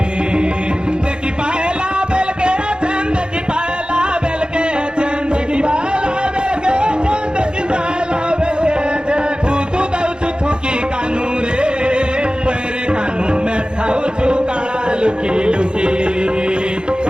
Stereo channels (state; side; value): late; left; 0.049 ms